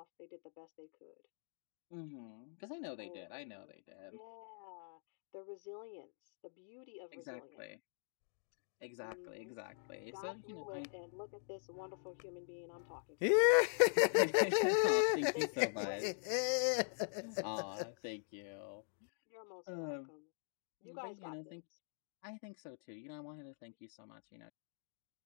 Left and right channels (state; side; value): silent; right; digital silence